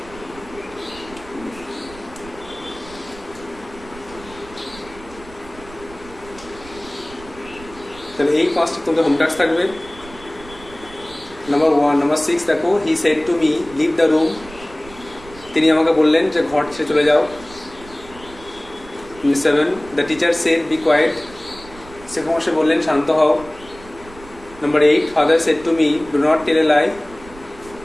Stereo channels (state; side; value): noise; right; rumble, 19 dB below the sound